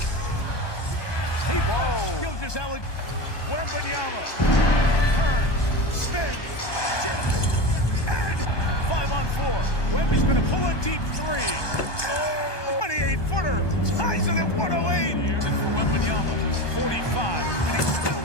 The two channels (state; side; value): late; right; 1.2 ms